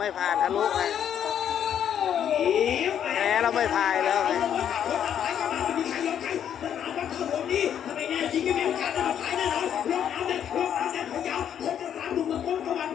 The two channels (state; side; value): quieter; right; 9.3 dB